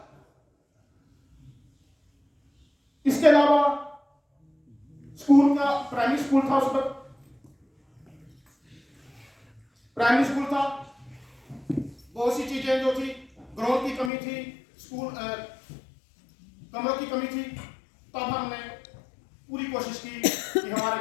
इसके अलावा स्कूल का प्राइमरी स्कूल था, उस वक्त प्राइमरी स्कूल था, बहुत सी चीजें जो थी, ग्रोथ की कमी थी, स्कूल कमरों की कमी थी। तब हमने पूरी कोशिश की कि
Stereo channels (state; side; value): drops out; right; at 14.1 s